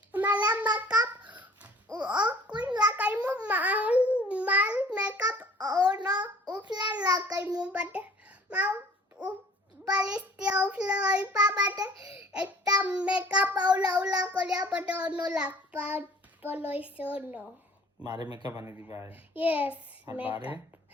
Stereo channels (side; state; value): both; normal; correlation 0.51